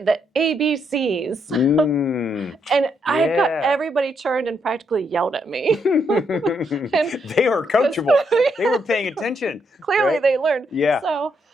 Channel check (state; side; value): normal; both; correlation 0.77